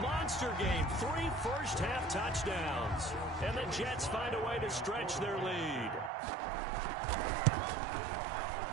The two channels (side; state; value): left; drops out; at 6.1 s